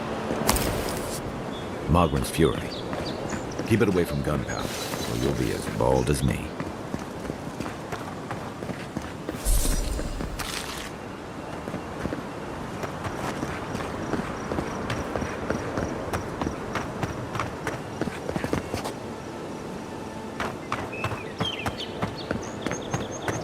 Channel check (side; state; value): both; identical; correlation 1.00